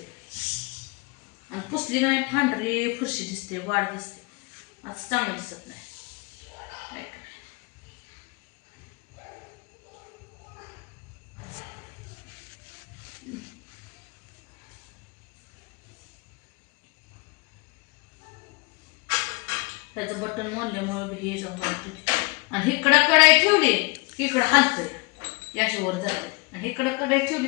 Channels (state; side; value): quieter; right; 28.4 dB